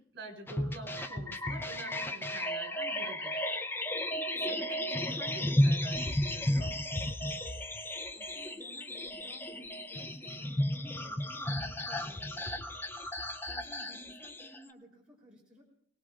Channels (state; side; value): normal; both; correlation 0.57